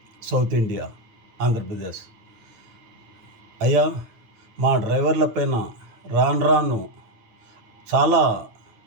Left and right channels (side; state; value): left; late; 9.3 ms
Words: south India Andhra Pradesh, అయ్యా మా డ్రైవర్ల పైన రాను చాలా